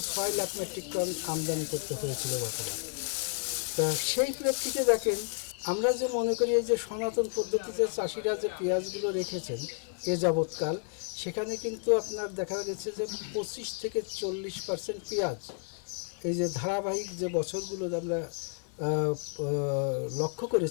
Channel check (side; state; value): right; silent; 57 dB below the other